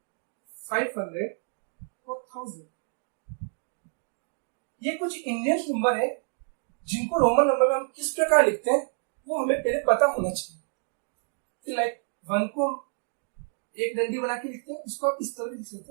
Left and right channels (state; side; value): silent; left; 59 dB below the other